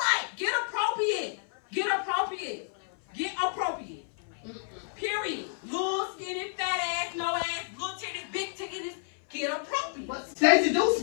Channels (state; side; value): silent; right; 58 dB below the other